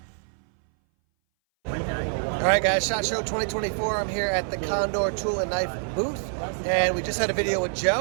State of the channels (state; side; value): silent; left; 59 dB below the other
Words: All right, guys, SHOT Show 2024. I'm here at the Condor Tool and Knife booth, and we just had a video with